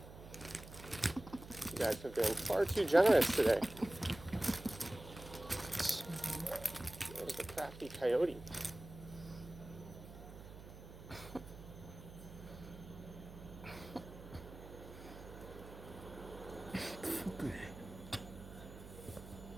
You guys have been far too generous today. There's the crafty coyote.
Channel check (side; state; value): right; noise; hum, 15 dB below the sound